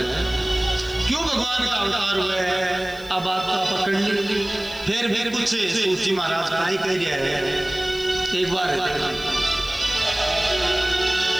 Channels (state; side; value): noise; left; hiss, 22 dB below the sound